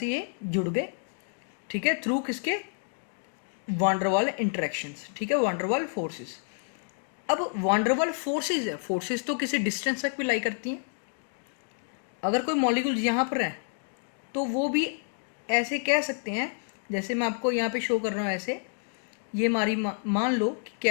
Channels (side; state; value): right; silent; digital silence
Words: ये जुड़ गए। ठीक है। थ्रू किसके, वांडरवाल इंटरेक्शंस। ठीक है, वांडरवाल फोर्सेस। अब वांडरवाल फोर्सेस है, फोर्सेस तो किसी डिस्टेंस तक भी लाई करती हैं। अगर कोई मॉलिक्यूल यहाँ पर है तो वो भी ऐसे कह सकते हैं, जैसे मैं आपको यहाँ पे शो कर रहा हूँ ऐसे, ये हमारी मान लो कि